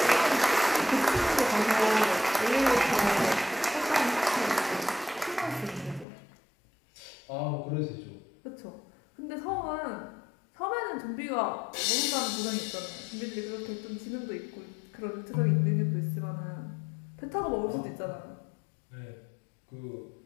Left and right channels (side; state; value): right; drops out; at 6.1 s